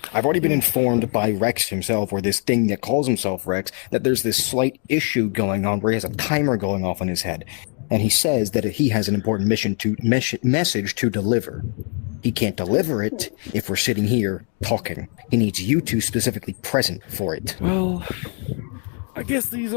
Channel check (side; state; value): right; quieter; 39.1 dB